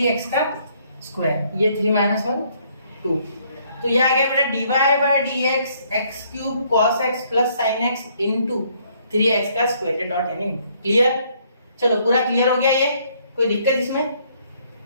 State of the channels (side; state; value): both; inverted; correlation -0.66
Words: का स्क्वायर, ये 3 - 1 2, तो ये आ गया बेटा dy by dx x3 cos x plus sin x into 3x का स्क्वायर, डॉट यानी क्लियर। चलो पूरा क्लियर हो गया, ये कोई दिक्कत इसमें?